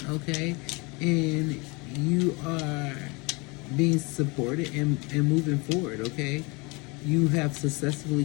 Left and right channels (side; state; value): right; quieter; 27.7 dB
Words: okay? And you are being supported and moving forward, okay? You have successfully